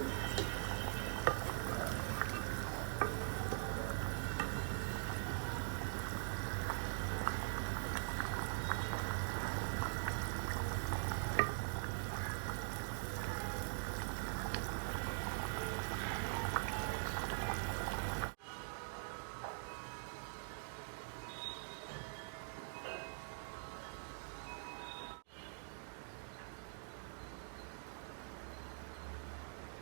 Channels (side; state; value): left; silent; digital silence